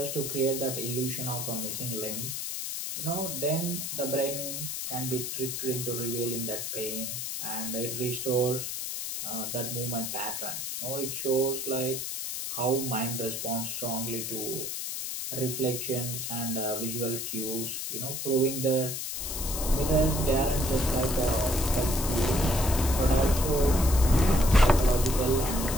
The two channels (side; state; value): left; noise; hiss, 4 dB below the sound